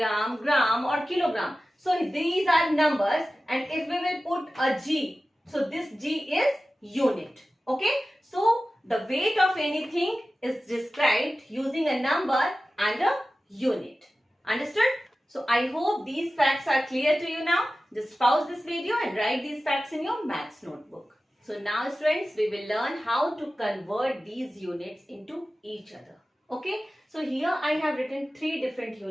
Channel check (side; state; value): both; normal; correlation 0.95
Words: gram or kilogram. So these are numbers, and if we will put a G, so this G is unit. Okay. So the weight of anything is described using a number and a unit. Understood? So I hope these facts are clear to you now. Just pause this video and write these facts in your maths notebook. So now students, we will learn how to convert these units into each other. Okay. So here I have written three different